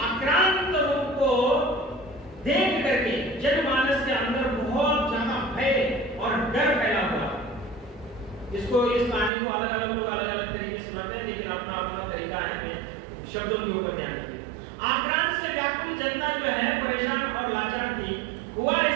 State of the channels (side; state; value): left; drops out; at 9.3 s